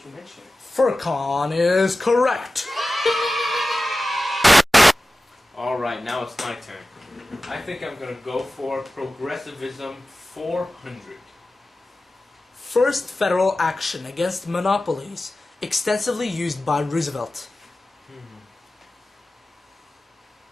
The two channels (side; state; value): both; normal; correlation 0.95